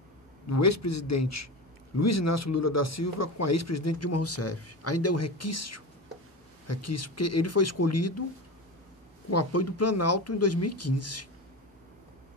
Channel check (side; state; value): both; normal; correlation 0.25